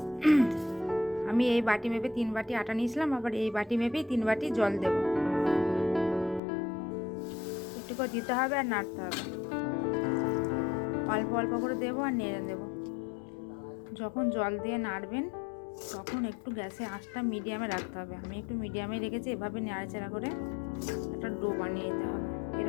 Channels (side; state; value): right; drops out; at 6.4 s